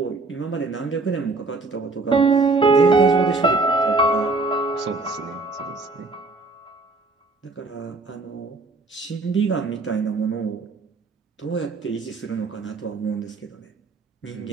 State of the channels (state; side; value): quieter; left; 3.5 dB